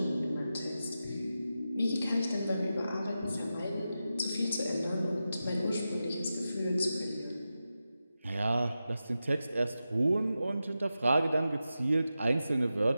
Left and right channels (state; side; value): inverted; both; correlation -0.91